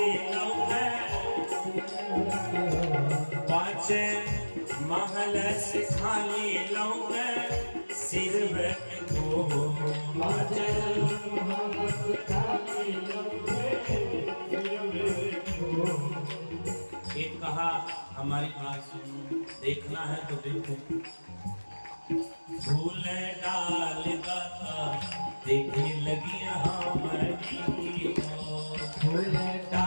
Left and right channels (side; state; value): both; inverted; correlation -1.00